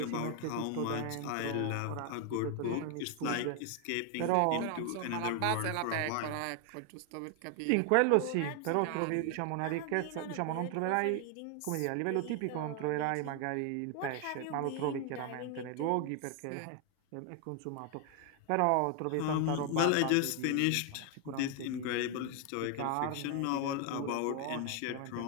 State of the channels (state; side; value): different; both; correlation 0.01